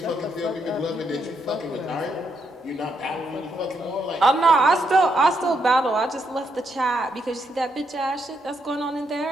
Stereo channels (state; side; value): normal; both; correlation 0.78